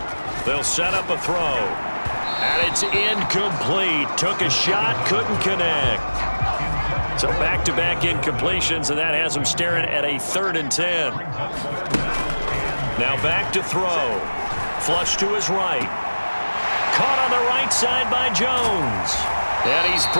They'll set up a throw. And it's incomplete. Took a shot, couldn't connect. So back-to-back incompletions, and that has them staring at a 3rd and 10. Now back to throw. Flush to his right. Caught on the right side by Jones. And he's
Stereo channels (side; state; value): both; inverted; correlation -1.00